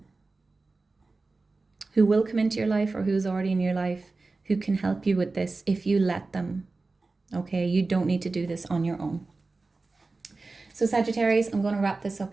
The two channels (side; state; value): left; quieter; 3.6 dB